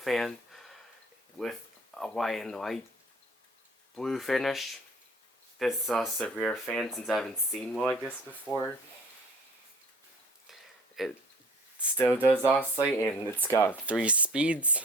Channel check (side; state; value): both; normal; correlation 0.50